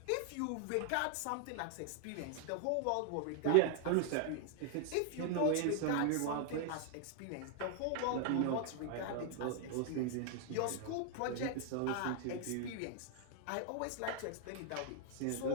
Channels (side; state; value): both; different; correlation 0.00